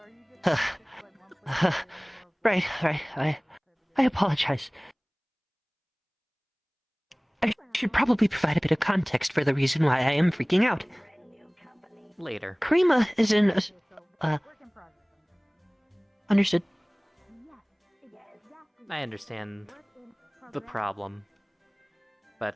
Right. I apologize. I should probably provide a bit of context for the reason why I am freaking out. Later. Karima is in a... Understood. I understand the problem,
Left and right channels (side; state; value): both; identical; correlation 1.00